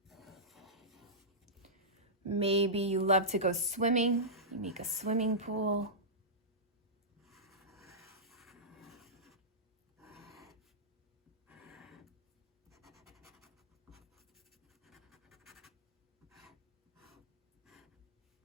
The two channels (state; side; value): normal; both; correlation -0.16